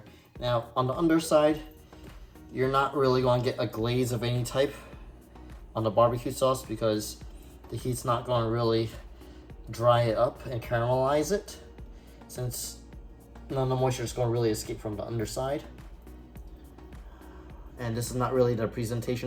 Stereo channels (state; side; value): identical; both; correlation 1.00